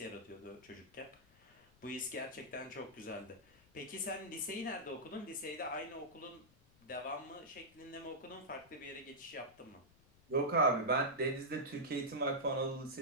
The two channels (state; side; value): noise; left; rumble, 28 dB below the sound